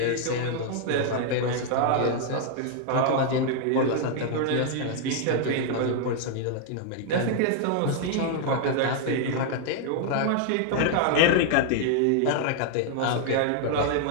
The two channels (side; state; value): both; different; correlation 0.00